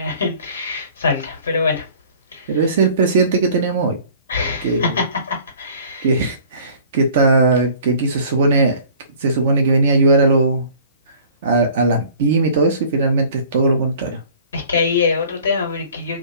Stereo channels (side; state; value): both; inverted; correlation -0.50